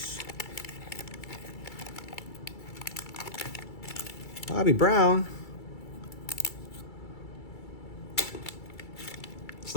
Bobby Brown. It's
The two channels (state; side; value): late; right; 2.3 ms